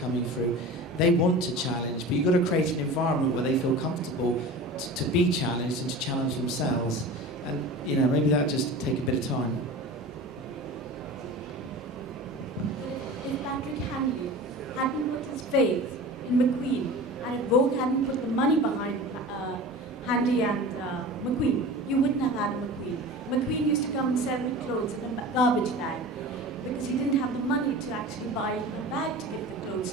coming through. They want to challenge, but you've got to create an environment where they feel comfortable to be challenged and to challenge themselves. And maybe that just take a bit of time. If Patrick Handley hadn't put his faith in McQueen, and Vogue hadn't put the money behind Handley and McQueen, you wouldn't have had McQueen. McQueen used to come and sell the clothes in a garbage bag because he didn't have the money to actually buy a bag to give the clothes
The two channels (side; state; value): both; normal; correlation 0.35